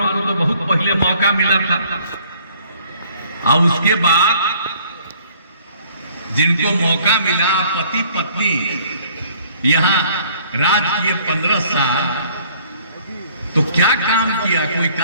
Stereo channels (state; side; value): inverted; both; correlation -0.58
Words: को तो बहुत पहले मौका मिला था, और उसके बाद जिनको मौका मिला, पति पत्नी यहां राज किए 15 साल, तो क्या काम किया? कोई